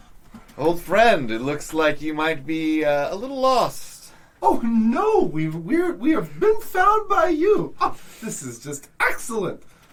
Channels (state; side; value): identical; both; correlation 1.00